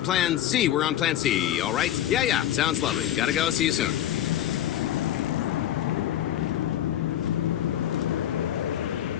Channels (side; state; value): right; quieter; 11.8 dB